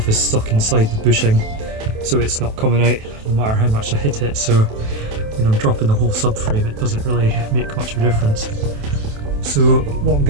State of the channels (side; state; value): left; late; 27 ms